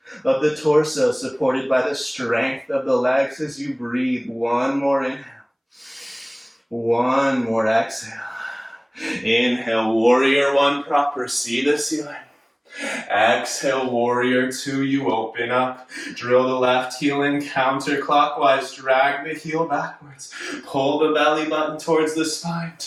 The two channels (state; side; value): identical; both; correlation 1.00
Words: of the torso, supported by the strength of the legs as you breathe. One more inhale. One more exhale. Inhale, warrior one proper, see the ceiling. Exhale, warrior two, you open up. Drill the left heel in counterclockwise, drag the heel backwards. Pull the belly button towards the spine.